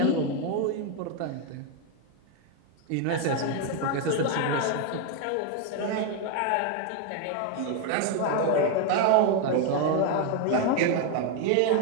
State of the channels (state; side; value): different; both; correlation 0.01